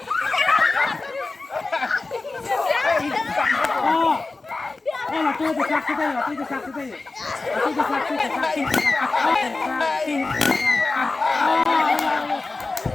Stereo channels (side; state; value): right; quieter; 3.5 dB